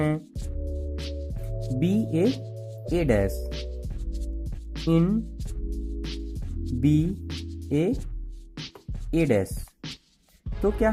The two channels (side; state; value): both; identical; correlation 1.00